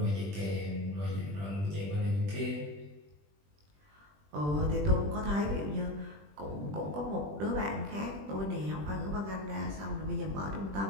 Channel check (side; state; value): left; late; 20 ms